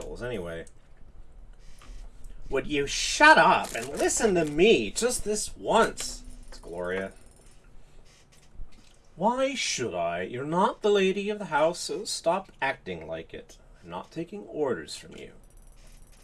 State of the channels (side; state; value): both; identical; correlation 1.00